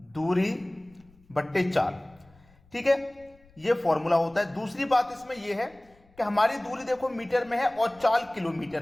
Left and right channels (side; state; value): left; noise; rumble, 29 dB below the sound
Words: दूरी बट्टे चाल, ठीक है। ये फॉर्मूला होता है। दूसरी बात इसमें यह है कि हमारी दूरी देखो मीटर में है और चाल